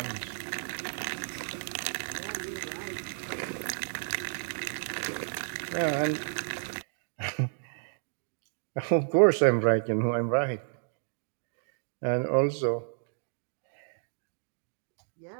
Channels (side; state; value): left; silent; digital silence